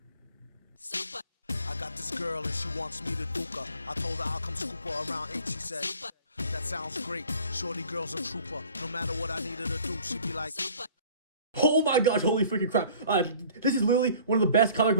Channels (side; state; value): both; inverted; correlation -0.49